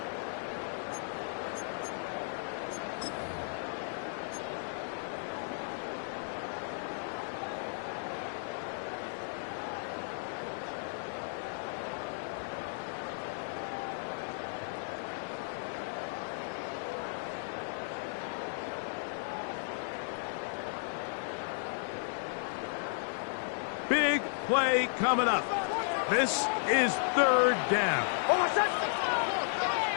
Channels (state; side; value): silent; right; digital silence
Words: Big play coming up. This is 3rd down.